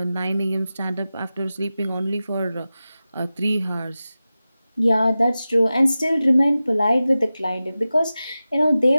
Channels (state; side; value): inverted; both; correlation -0.95